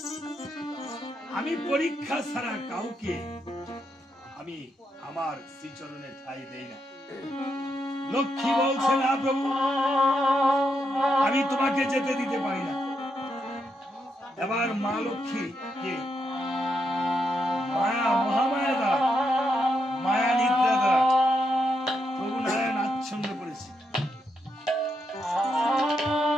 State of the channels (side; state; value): both; normal; correlation 0.81